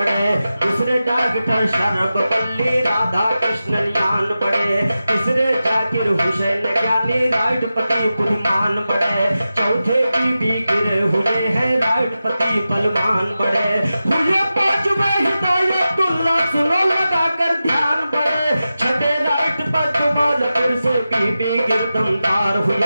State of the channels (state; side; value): inverted; both; correlation -0.93